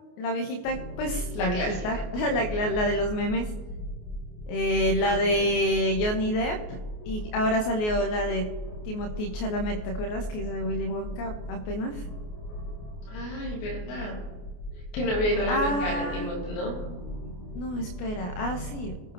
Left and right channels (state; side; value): late; right; 28 ms